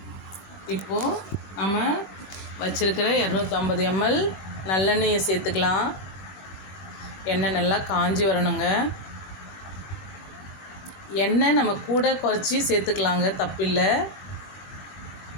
இப்போது நம்ம வச்சுருக்கிற 250 ml நல்லெண்ணெயை சேர்த்துக்கலாம். எண்ணெய் நல்லா காஞ்சி வரணுங்க. எண்ணெய் நம்ம கூட குறைச்சி சேர்த்துக்கலாங்க, தப்பில்லை.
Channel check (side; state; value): right; late; 21 ms